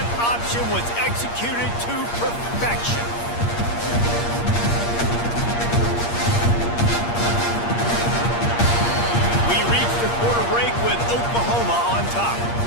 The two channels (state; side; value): late; right; 8.5 ms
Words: option was executed to perfection. We reach the quarter break with Oklahoma on top.